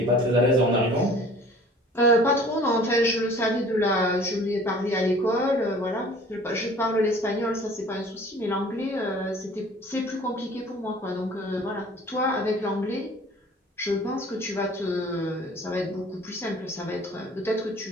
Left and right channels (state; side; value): normal; both; correlation 0.48